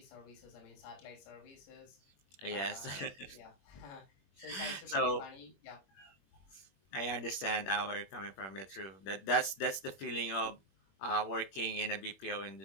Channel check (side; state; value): right; late; 21 ms